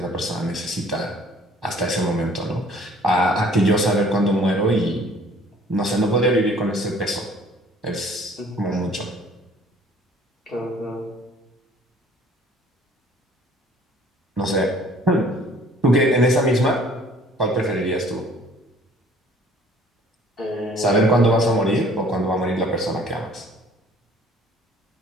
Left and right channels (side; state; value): both; normal; correlation 0.55